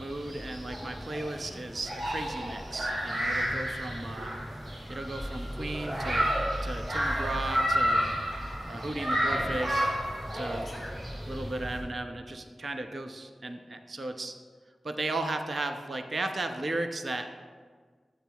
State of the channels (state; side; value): normal; both; correlation 0.92